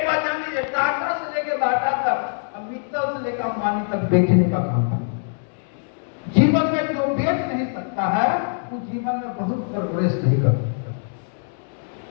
बात जान लीजिए, टाटा से लेकर बाटा तक, मित्तल से लेकर अंबानी तक बेचने का काम है। जीवन में जो बेच नहीं सकता है, वो जीवन में बहुत प्रोग्रेस नहीं कर सकता।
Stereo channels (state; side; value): silent; right; digital silence